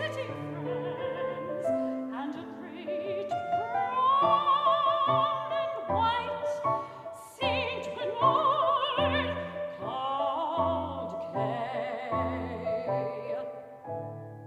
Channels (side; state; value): both; identical; correlation 1.00